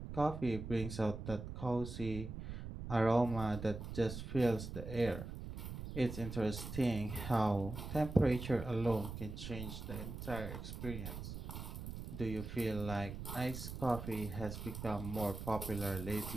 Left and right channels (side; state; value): right; noise; rumble, 8 dB below the sound